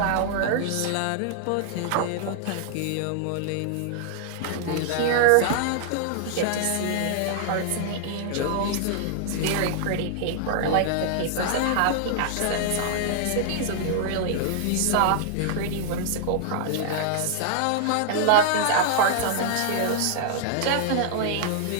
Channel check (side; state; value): both; different; correlation -0.01